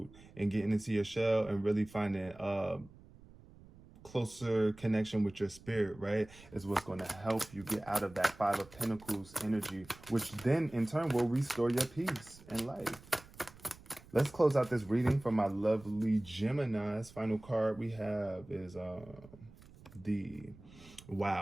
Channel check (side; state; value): right; noise; rumble, 22 dB below the sound